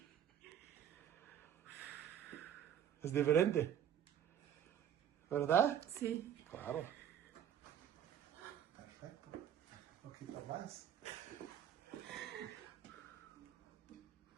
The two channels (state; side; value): quieter; left; 9.6 dB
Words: Es diferente. ¿Verdad? Sí. Claro. Perfecto. Un poquito más. Perfecto.